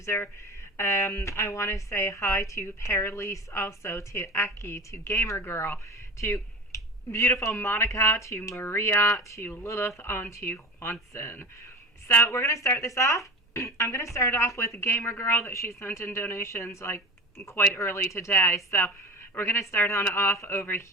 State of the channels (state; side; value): normal; both; correlation 0.31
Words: I want to say hi to Perlise, also to Eki, to Gamer Girl, to beautiful Monica, to Maria, to Lilith, on to Juanson. So we're going to start this off. I'm going to start off with Gamer Girl that she sent in donations like quite early today. So we're going to start on off over